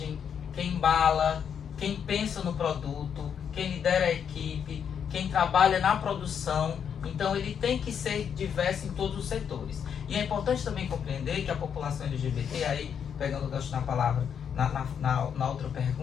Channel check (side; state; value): right; quieter; 7.8 dB